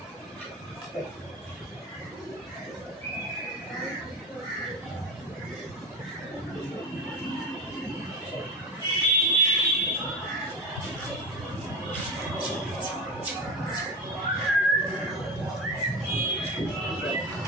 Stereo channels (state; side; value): normal; both; correlation 0.23